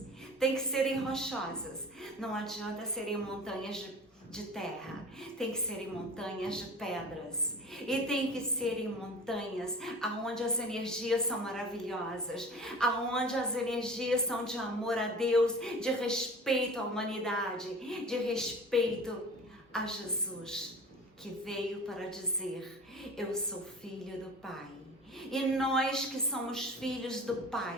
Tem que serem rochosas. Não adianta serem montanhas de terra. Tem que serem montanhas de pedras. E tem que serem montanhas aonde as energias são maravilhosas. Aonde as energias são de amor a Deus, de respeito à humanidade, de respeito a Jesus, que veio para dizer: eu sou filho do Pai. E nós que somos filhos do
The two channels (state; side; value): normal; both; correlation 0.39